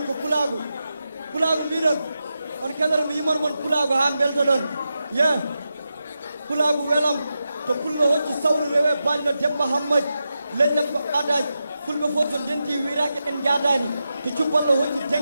ko pulagu midon on kedere mi yimor mon pulagu ha belto don yeah pulagu welam to pullo hocci sawru rewe ballo debba hammad lejjam ko adaj fulbe fof so denti wirake en jadani to cubballo hocci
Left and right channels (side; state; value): both; inverted; correlation -0.89